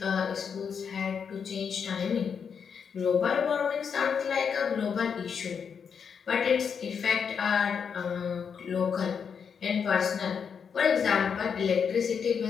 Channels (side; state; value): right; quieter; 6.7 dB